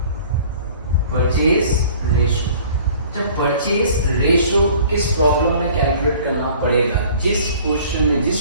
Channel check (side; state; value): both; inverted; correlation -0.50